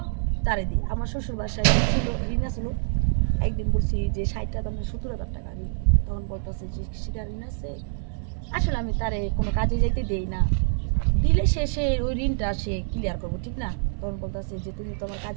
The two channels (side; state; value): left; silent; 61 dB below the other